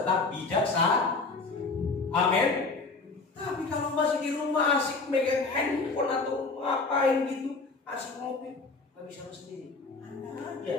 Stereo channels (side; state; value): right; quieter; 3.9 dB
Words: bijaksana. Amin. Tapi kalau masih di rumah asik megang handphone atau ngapain gitu, asik ngopi, nggak bisa sendiri. Anda aja